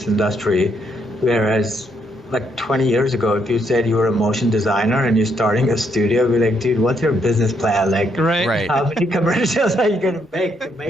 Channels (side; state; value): both; normal; correlation 0.74